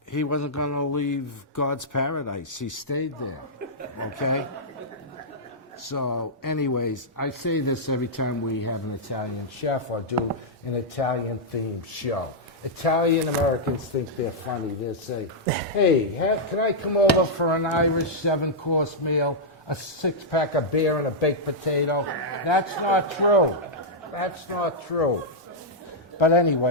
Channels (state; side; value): normal; both; correlation -0.08